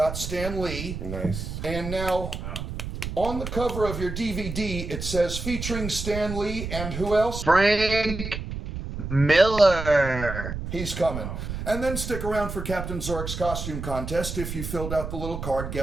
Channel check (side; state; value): right; noise; rumble, 6 dB below the sound